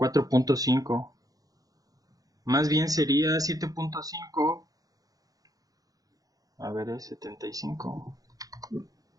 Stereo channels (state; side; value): late; left; 0.17 ms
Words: Más bien sería 7.5. A ver, es 75.